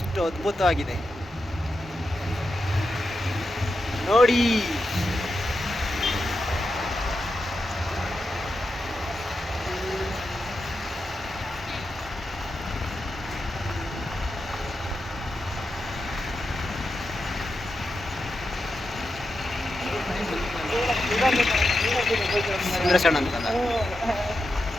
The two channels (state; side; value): normal; both; correlation 0.88